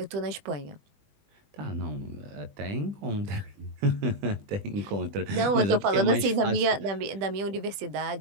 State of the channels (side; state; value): left; late; 20 ms